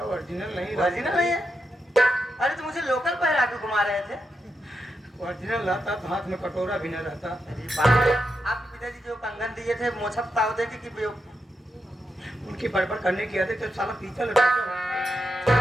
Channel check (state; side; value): normal; both; correlation 0.84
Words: ओरिजिनल नहीं, ओरिजिनल नहीं है? अरे तो मुझे लोकल पहरा के घुमा रहे थे। ओरिजिनल रहता तो हाथ में कटोरा भी न रहता। अरे बाप, आपके पिताजी जो कंगन दिए थे मोछप ताव दे के कि उनकी बड़बड़ करने की आदत तो साला पीतल।